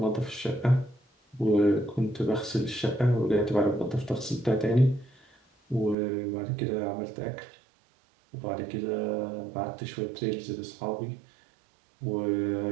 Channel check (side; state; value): left; drops out; at 6.0 s